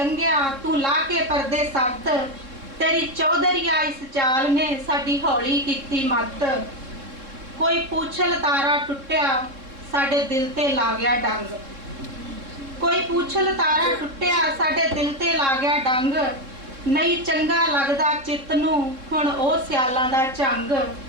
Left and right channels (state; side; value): late; left; 3.7 ms